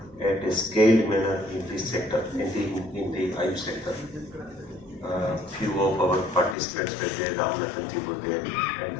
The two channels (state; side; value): drops out; right; at 6.6 s